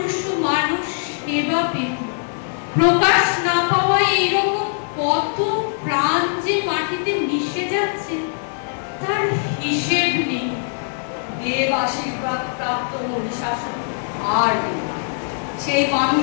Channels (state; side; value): silent; right; digital silence